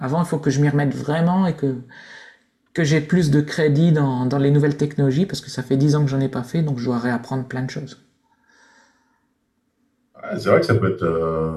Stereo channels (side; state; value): both; identical; correlation 1.00